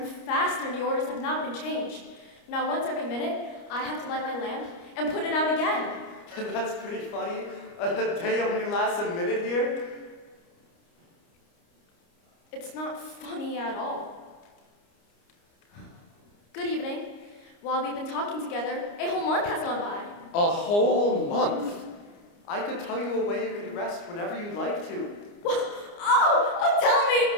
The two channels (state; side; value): late; right; 29 ms